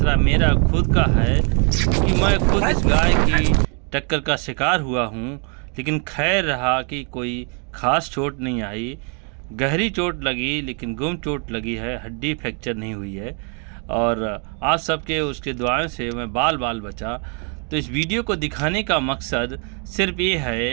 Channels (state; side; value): quieter; left; 38.7 dB